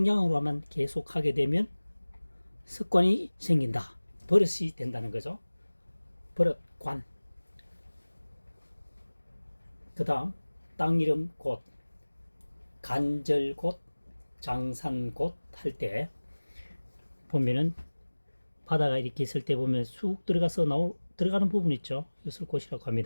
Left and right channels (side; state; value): both; inverted; correlation -1.00